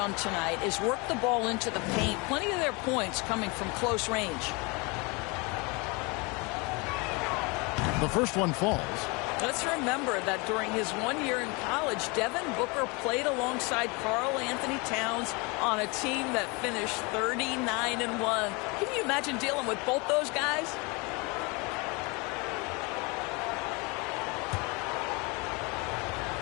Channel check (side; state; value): right; quieter; 28.6 dB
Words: tonight is work the ball into the paint. Plenty of their points coming from close range. The first one falls. Let's remember that during his 1 year in college, Devin Booker played alongside Karl Anthony Towns on a team that finished 39-1. Can you imagine dealing with both those guys?